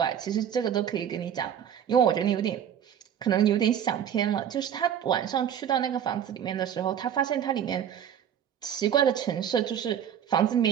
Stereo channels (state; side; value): quieter; left; 9.2 dB